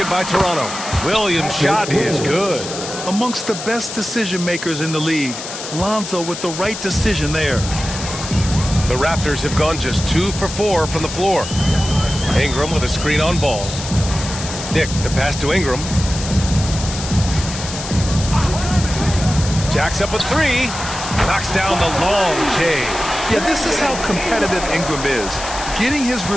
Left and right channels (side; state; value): left; noise; hiss, 9 dB below the sound